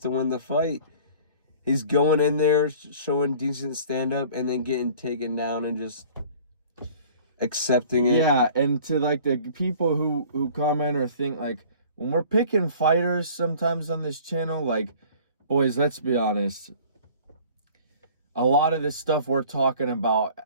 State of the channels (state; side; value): inverted; both; correlation -0.48